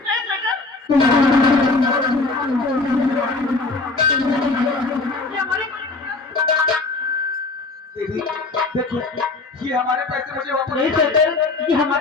नहीं शंकर, ये हमारे दीदी देखो, ये हमारे पैसे मुझे वापस नहीं शंकर, ये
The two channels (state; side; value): quieter; right; 3.5 dB